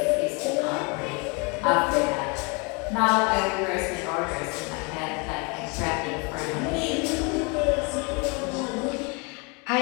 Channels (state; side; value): quieter; right; 31.5 dB